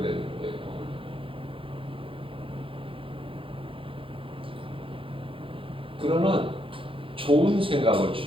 되는 거예요. 그러나 좋은 생각을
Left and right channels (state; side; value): late; left; 0.25 ms